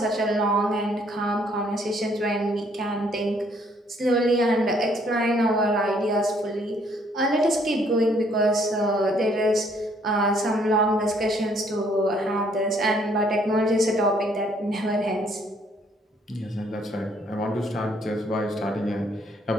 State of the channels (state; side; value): normal; both; correlation 0.65